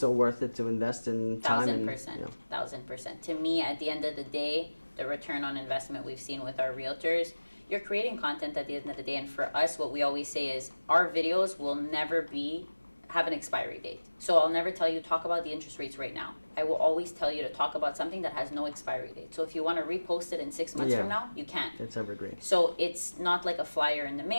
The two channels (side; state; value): both; inverted; correlation -1.00